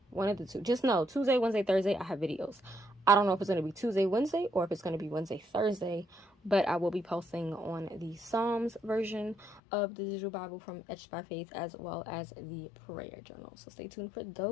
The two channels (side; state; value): right; drops out; at 9.6 s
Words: One of the two. Just know Tuesday, Wednesday, Thursday, I have videos. I don't know if it's going to be Tuesday, Wednesday, or if it's going to be Wednesday, Thursday, but I will be posting on the Psalms version of the Digital Bible from Etched by Faith, as well as the prayer journal. So stay tuned for